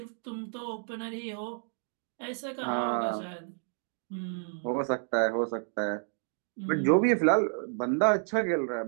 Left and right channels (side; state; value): left; silent; 57 dB below the other